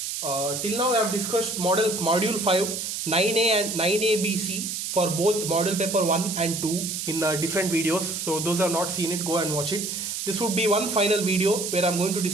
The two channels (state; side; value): noise; right; hiss, 4 dB below the sound